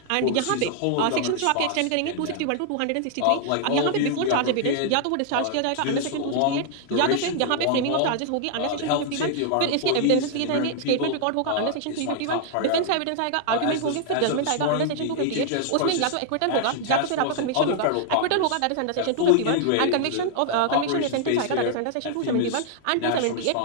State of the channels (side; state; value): both; different; correlation -0.01